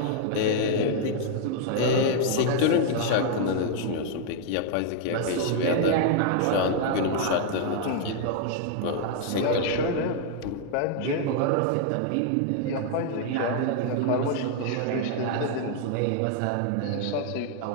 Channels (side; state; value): both; different; correlation 0.00